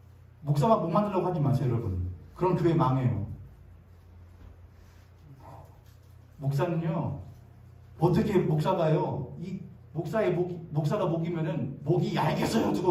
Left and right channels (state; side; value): identical; both; correlation 1.00